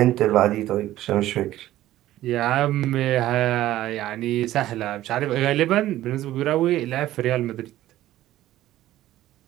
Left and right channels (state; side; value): quieter; left; 14.5 dB